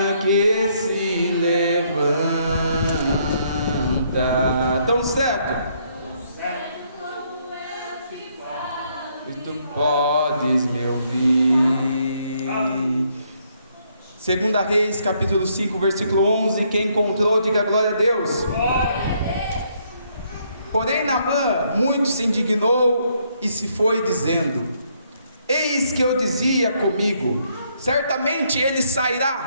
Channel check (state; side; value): inverted; both; correlation -0.71